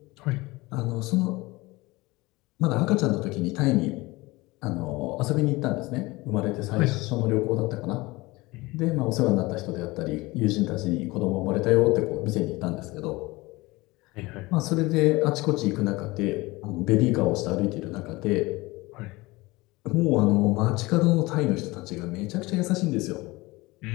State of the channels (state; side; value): quieter; right; 21.8 dB